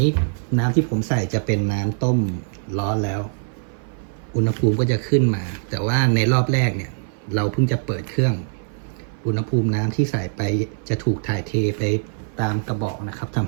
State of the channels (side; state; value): left; silent; 58 dB below the other